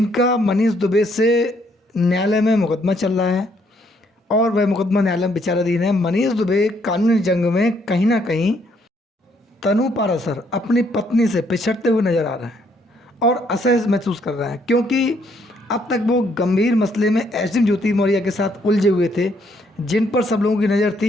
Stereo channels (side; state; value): both; normal; correlation 0.70